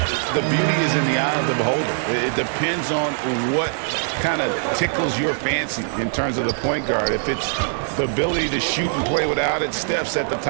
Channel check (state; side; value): silent; left; digital silence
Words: the beauty is in the eye of the beholder. It depends on what kind of tickles your fancy in terms of the point guard. If it's the ability to shoot and play without it, Steph's at the